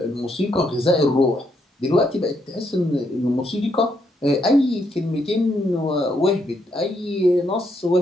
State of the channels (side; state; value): both; normal; correlation 0.76